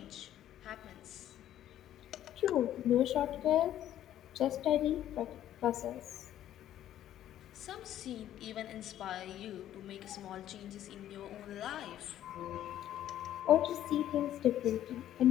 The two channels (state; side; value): quieter; right; 12.0 dB